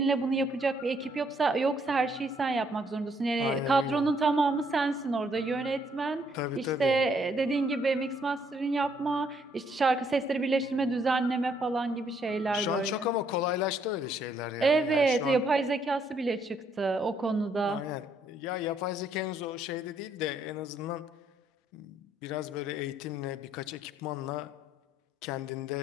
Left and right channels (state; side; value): normal; both; correlation 0.69